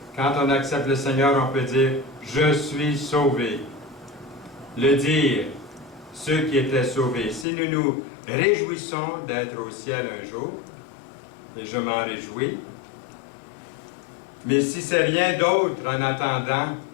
Quand on accepte le Seigneur, on peut dire « Je suis sauvé ». Le dire, ceux qui étaient sauvés. Si nous nous réjouissons d'être au ciel un jour, et je m'en réjouis, mais si c'est rien d'autre en attendant,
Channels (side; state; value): right; drops out; at 7.5 s